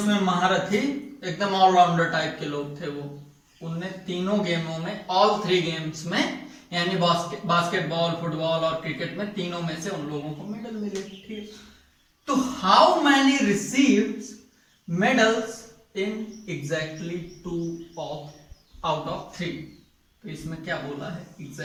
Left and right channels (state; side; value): identical; both; correlation 1.00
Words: महारथी, एकदम ऑलराउंडर टाइप के लोग थे वो, उनने तीनों गेमों में, ऑल 3 गेम्स में, यानी बास्केटबॉल, फुटबॉल और क्रिकेट में, तीनों में से उन लोगों को मेडल मिले, ठीक। तो how many received medals in exactly 2 out of 3, तो इसमें क्या बोला है,